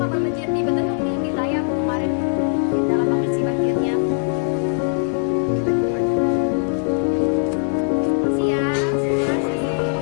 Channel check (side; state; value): right; silent; 64 dB below the other